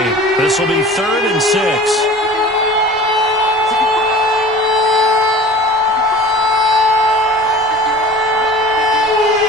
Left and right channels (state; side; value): normal; both; correlation 0.42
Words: This will be 3rd and 6.